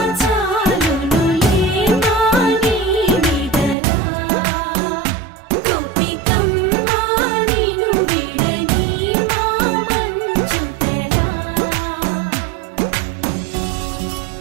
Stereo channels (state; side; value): drops out; left; at 3.8 s